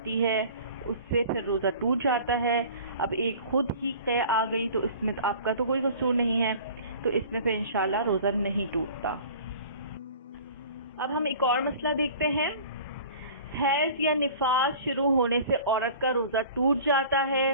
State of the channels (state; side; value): inverted; both; correlation -0.44